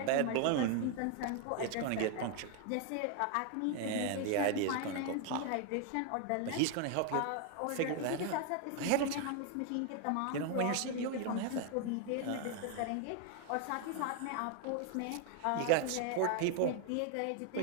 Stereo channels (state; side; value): different; both; correlation 0.01